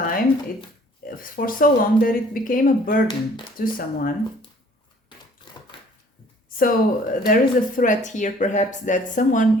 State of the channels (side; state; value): both; normal; correlation 0.55